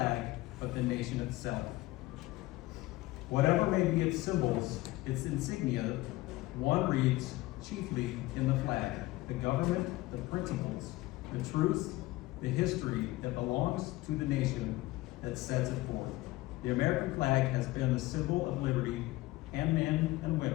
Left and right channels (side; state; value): right; quieter; 18.9 dB